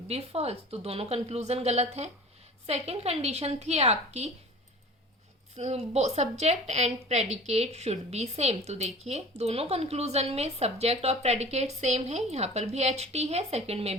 be false, तो दोनों कंक्लूजन गलत हैं। सेकेंड कंडीशन थी आपकी subject and predicate should be same. तो देखिए दोनों कंक्लूजन में सब्जेक्ट और प्रेडिकेट सेम है। यहाँ पर भी एच टी है, सेकंड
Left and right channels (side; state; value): both; normal; correlation 0.41